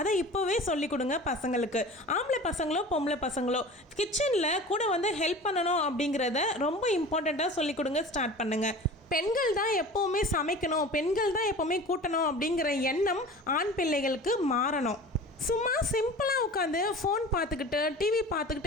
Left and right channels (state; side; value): normal; both; correlation 0.38